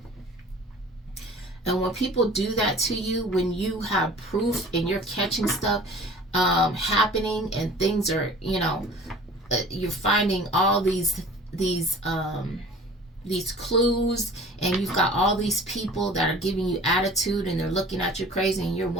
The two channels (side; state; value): both; normal; correlation 0.45